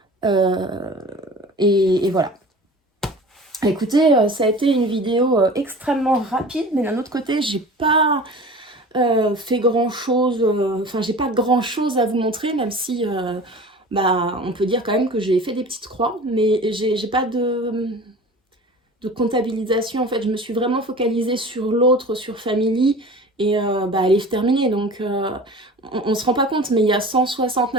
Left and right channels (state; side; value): normal; both; correlation 0.39